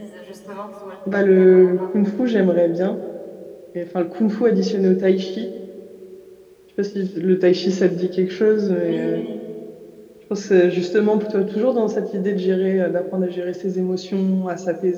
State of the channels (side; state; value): both; identical; correlation 1.00